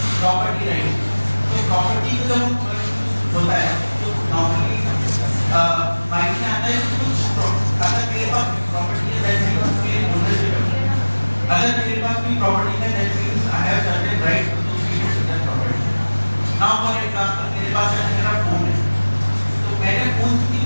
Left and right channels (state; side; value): inverted; both; correlation -1.00